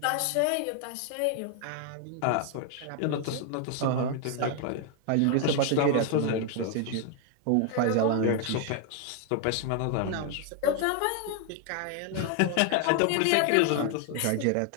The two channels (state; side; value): different; both; correlation 0.00